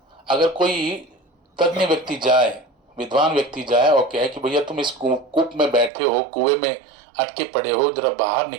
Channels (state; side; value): drops out; left; at 5.9 s